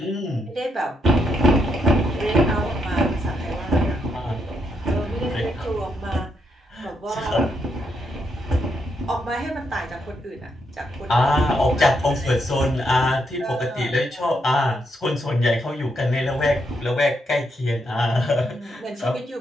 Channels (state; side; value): normal; both; correlation 0.79